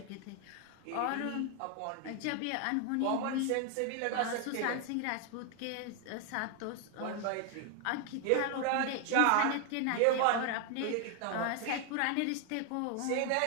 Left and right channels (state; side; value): different; both; correlation 0.01